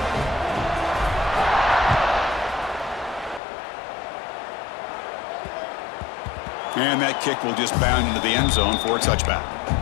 And that kick will just bound into the end zone for a touchback.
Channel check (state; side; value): drops out; right; at 3.4 s